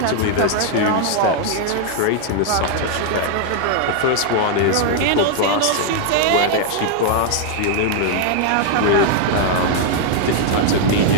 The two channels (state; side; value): different; both; correlation 0.00